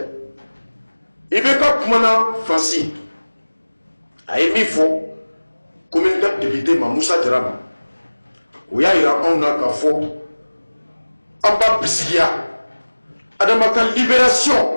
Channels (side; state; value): both; inverted; correlation -1.00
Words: Ibeka Kumana Franci. A émis faux, comme une date député Mamoussa Dram. Où y a un akafo. Amba Bisigia. Adamaka